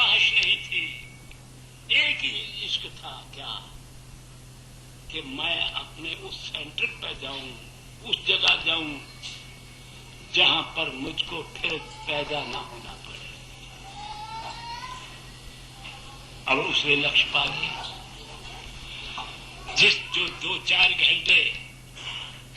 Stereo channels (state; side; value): identical; both; correlation 1.00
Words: नहीं थी, एक ही इश्क था, क्या कि मैं अपने उस सेंटर पर जाऊं, उस जगह जाऊं जहां पर मुझको फिर पैदा ना होना पड़े। अब उसने लक्ष्य पा लिया। जो 2-4 घंटे